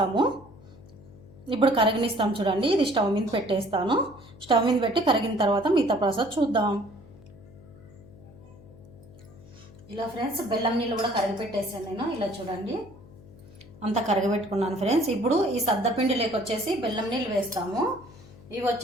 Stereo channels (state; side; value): noise; left; hum, 21 dB below the sound